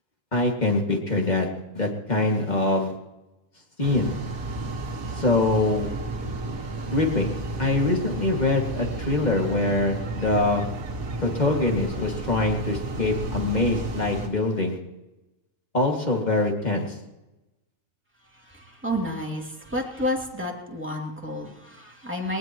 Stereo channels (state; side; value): normal; both; correlation 0.01